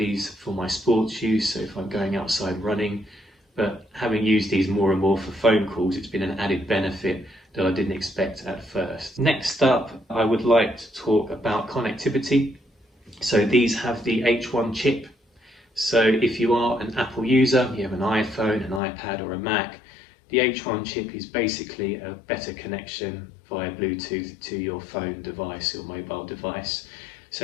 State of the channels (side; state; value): right; drops out; at 18.8 s